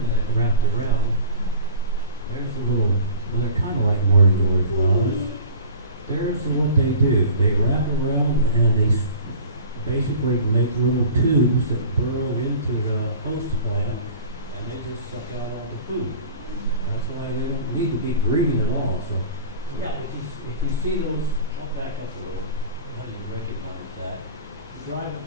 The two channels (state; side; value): inverted; both; correlation -0.42